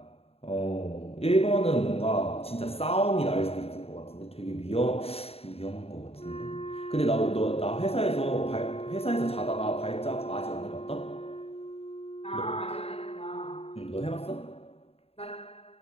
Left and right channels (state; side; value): late; right; 0.29 ms